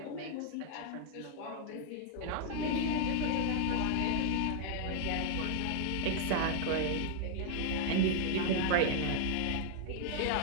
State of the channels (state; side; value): different; both; correlation 0.00